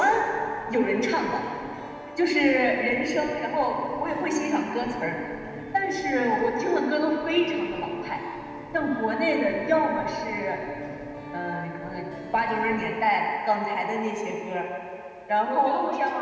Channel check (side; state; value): both; identical; correlation 1.00